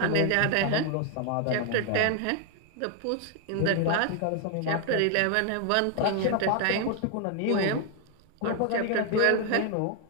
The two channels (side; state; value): both; different; correlation 0.00